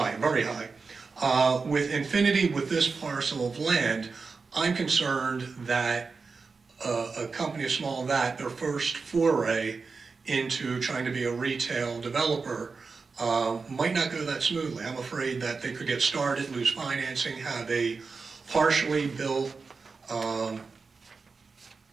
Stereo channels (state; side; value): quieter; left; 4.6 dB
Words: very high. With Infinity, with this parcel of land, I'm concerned that a company as small as that, their first foray into trying to be a retail developer, might not go that smoothly. I'm afraid that they could get started, lose financing, have a partially built